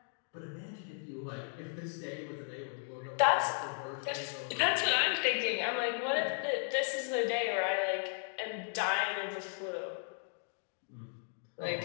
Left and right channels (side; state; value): right; silent; 54 dB below the other